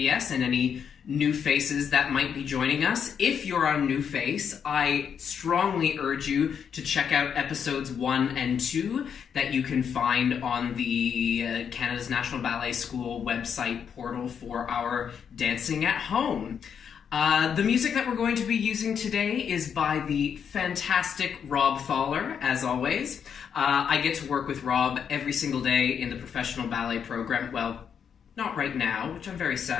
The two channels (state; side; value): quieter; right; 7.5 dB